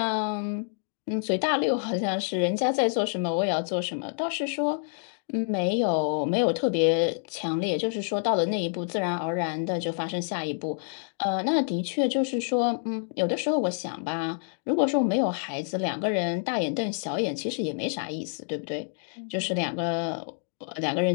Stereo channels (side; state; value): right; silent; digital silence